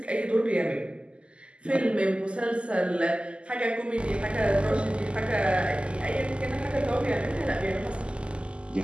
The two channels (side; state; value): left; late; 0.053 ms